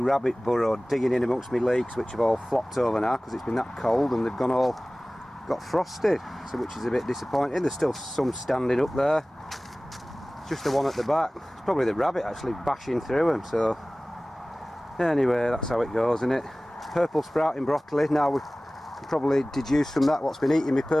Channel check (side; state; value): both; normal; correlation 0.98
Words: burrow digging in amongst my leeks, which have all flopped over now because it's been that cold and they've got frosted, so which is a bit disappointing. There's still some standing up there, just the one at the back. It's probably the rabbit actually bashing through them. So anyway, that's how it goes, isn't it? Purple sprouting broccoli. Now we can probably deduce from that what's been eating me